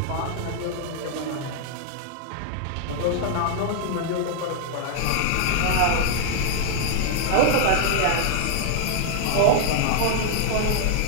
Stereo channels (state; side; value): different; both; correlation 0.00